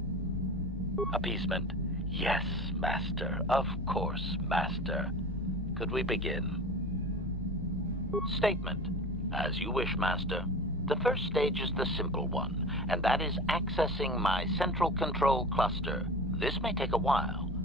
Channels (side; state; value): both; normal; correlation 0.34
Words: Appeasement. Yes, Master. Of course, Master. Could we begin? Statement. As you wish, Master. The first stage is the simple one, and that is accessing my central control cluster. This may take a while.